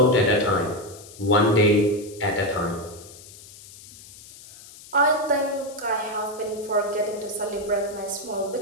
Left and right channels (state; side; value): noise; left; hiss, 19 dB below the sound